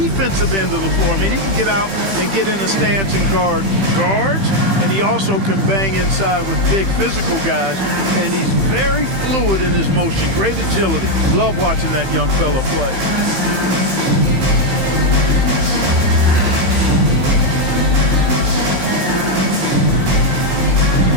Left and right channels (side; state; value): left; late; 15 ms